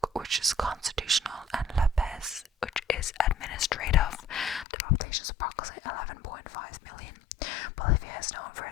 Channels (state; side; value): drops out; right; at 4.7 s